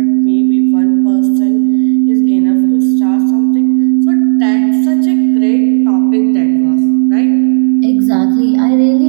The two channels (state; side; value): silent; left; 68 dB below the other